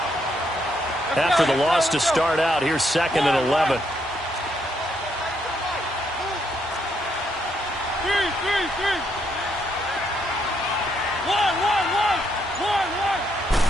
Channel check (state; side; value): normal; both; correlation 0.75